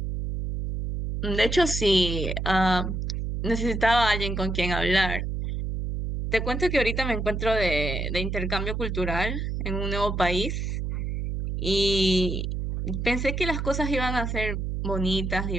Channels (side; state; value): right; noise; hum, 2 dB below the sound